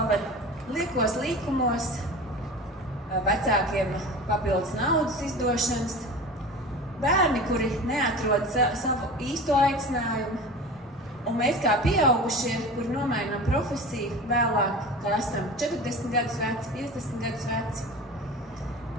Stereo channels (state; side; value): normal; both; correlation 0.34